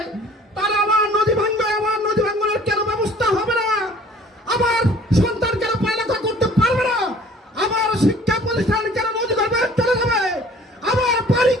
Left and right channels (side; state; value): both; normal; correlation 0.52